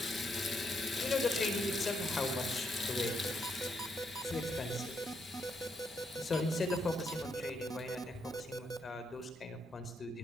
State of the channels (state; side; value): normal; both; correlation 0.77